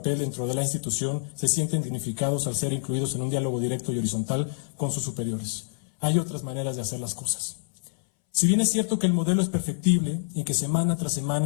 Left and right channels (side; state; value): right; silent; 60 dB below the other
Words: dentro de la institución, se sienten dignificados al ser incluidos en un diálogo directo y horizontal con sus superiores. Hay otras maneras de hacer las cosas. Si bien es cierto que el modelo es perfectible y que semana tras